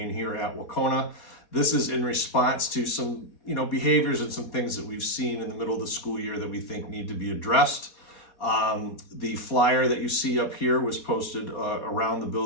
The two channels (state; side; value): late; right; 4.3 ms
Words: here at Wahconah. This is in response to some, behaviors and some things that we've seen in the middle of the school year that we think need to be addressed. The flyer that you see up here was posted around the